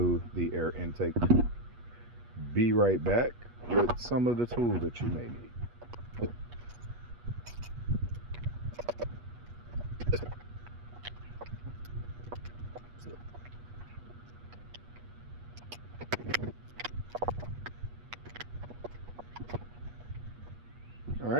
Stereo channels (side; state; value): left; late; 8.3 ms